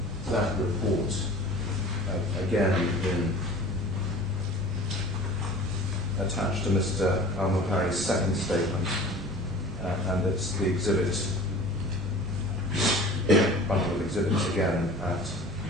that report again attached to Mr. Al-Muhari's second statement, and it's the exhibit, bundle of exhibits again at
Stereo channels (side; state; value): both; normal; correlation 0.43